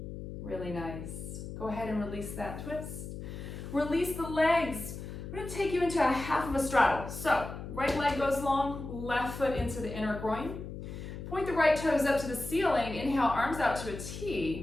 Really nice. Go ahead and release that twist. Release the legs. I'm going to take you into a half of a straddle. So, right leg goes long, left foot into the inner groin. Point the right toes up to the ceiling. Inhale, arms out to a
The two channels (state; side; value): noise; left; hum, 9 dB below the sound